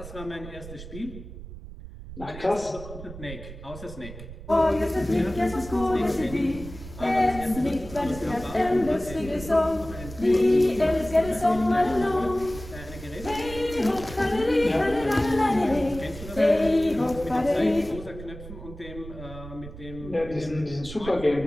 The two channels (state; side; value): noise; right; rumble, 13 dB below the sound